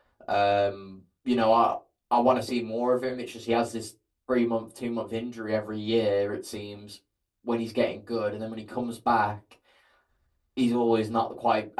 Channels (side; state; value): both; identical; correlation 1.00